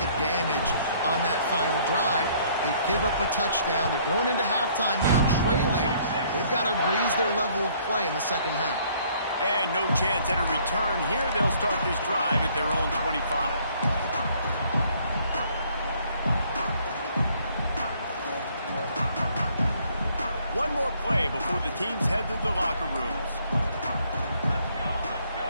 the damage on that final drive. They give up a touchdown. They're going into halftime now, trailing. They've got to raise their level of play in the second half. And no chance at a return here. They'll start this drive at their own 25. One more play before the teams head to the locker rooms.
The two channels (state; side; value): inverted; both; correlation -0.62